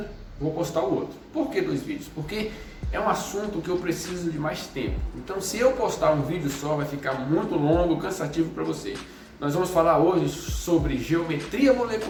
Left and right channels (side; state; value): both; identical; correlation 1.00